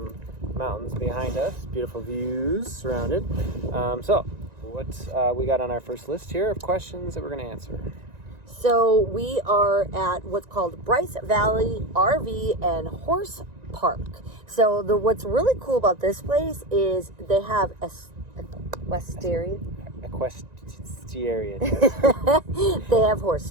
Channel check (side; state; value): left; late; 1.9 ms